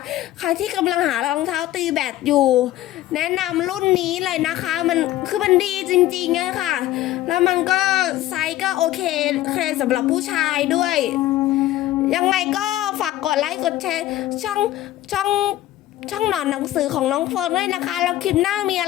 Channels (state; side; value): quieter; right; 14.5 dB